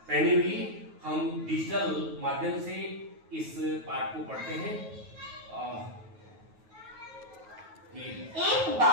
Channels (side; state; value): left; late; 9.3 ms